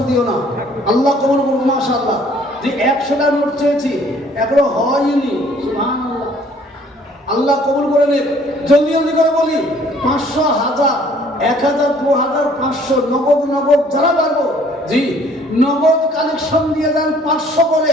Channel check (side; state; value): both; normal; correlation 0.58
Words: দিও না। আল্লাহ কবুল করুন, মাশাআল্লাহ। যে 100টা নোট চেয়েছি, এখনো হয়নি। সুবহানাল্লাহ, আল্লাহ কবুল করে নেন। জলদি জলদি করে বলি, 500, 1000, 1000, 2000, 500, নগদ যারা পারবো। জি, নগদ কালেকশন দিয়ে দেন 500 করে।